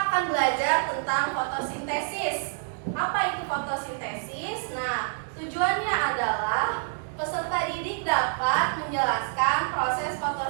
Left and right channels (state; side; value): silent; left; 57 dB below the other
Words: belajar tentang fotosintesis. Apa itu fotosintesis? Nah, tujuannya adalah peserta didik dapat menjelaskan proses